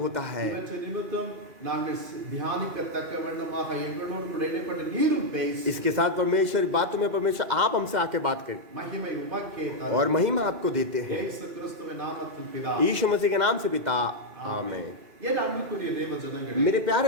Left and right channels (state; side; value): late; left; 2.1 ms